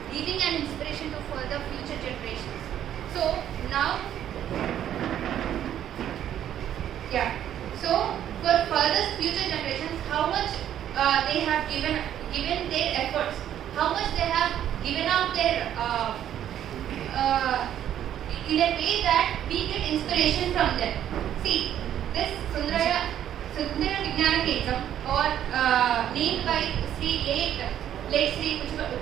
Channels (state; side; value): quieter; left; 10.7 dB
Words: leaving an inspiration to further future generations. So now. Yeah. So for further future generations, how much they have given their efforts, how much they have given out their in a way that we get inspiration from them. See, this Sundara Vijnana Kendram or named by late Sri